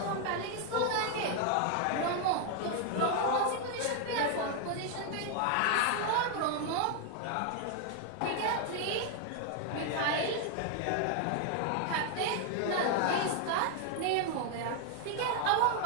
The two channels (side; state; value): both; different; correlation 0.00